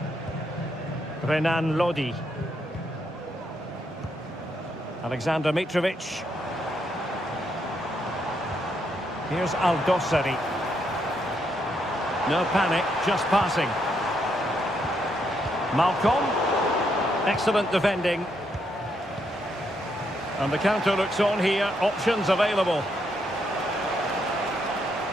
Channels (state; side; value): normal; both; correlation 0.77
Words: Renan Lodi. Alexander Mitrovic. Here's Aldosari. No panic, just passing. Malcolm. Excellent defending. And the counter looks on here. Options available.